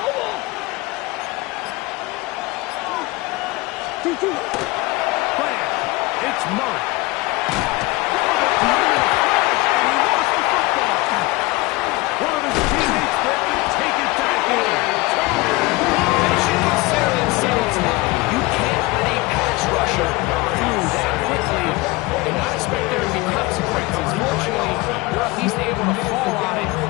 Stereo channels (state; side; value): quieter; right; 22.3 dB